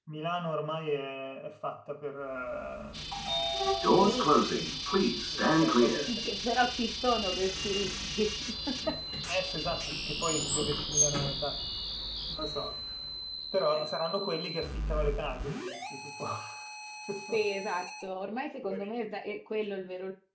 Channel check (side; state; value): both; identical; correlation 1.00